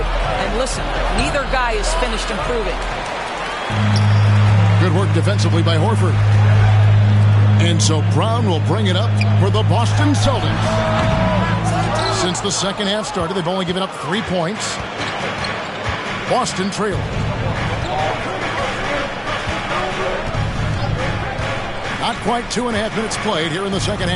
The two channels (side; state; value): both; identical; correlation 1.00